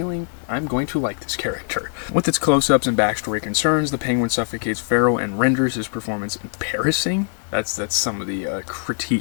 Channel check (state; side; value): silent; right; digital silence